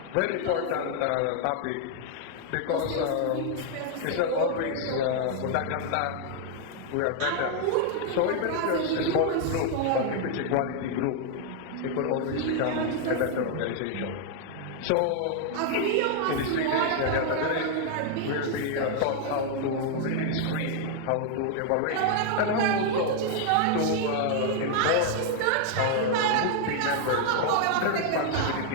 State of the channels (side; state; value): both; different; correlation 0.00